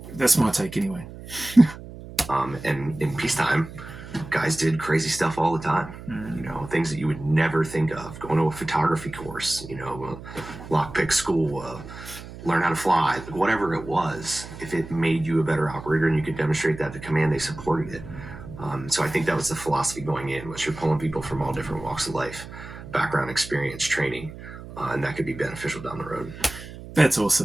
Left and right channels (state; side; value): noise; right; hum, 14 dB below the sound